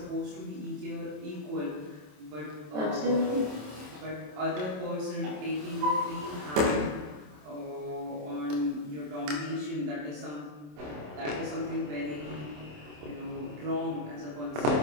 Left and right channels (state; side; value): late; left; 27 ms